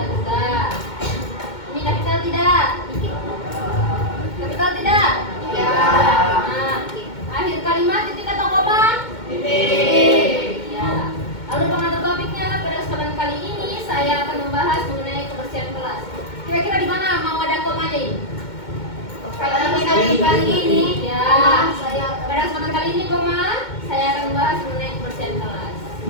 juga. Ini kapital tidak?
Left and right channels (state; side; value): late; right; 2.2 ms